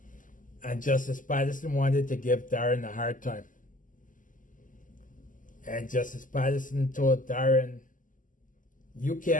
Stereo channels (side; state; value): right; late; 0.38 ms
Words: And Justice Patterson wanted to give Darren a hard time. And Justice Patterson told Darren, you